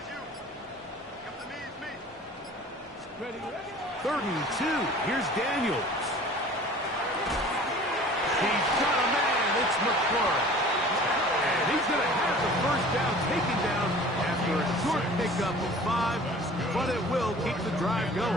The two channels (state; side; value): normal; both; correlation 0.45